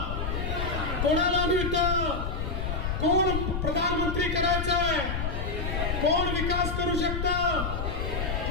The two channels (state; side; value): noise; left; rumble, 2 dB below the sound